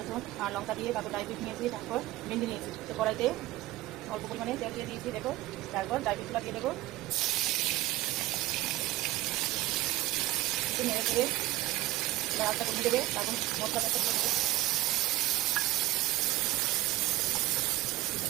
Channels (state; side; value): quieter; left; 17.6 dB